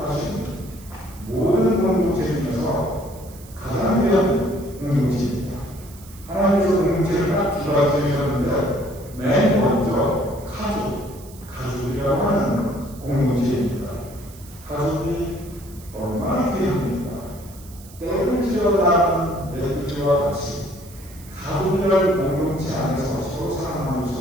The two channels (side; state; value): right; noise; hiss, 21 dB below the sound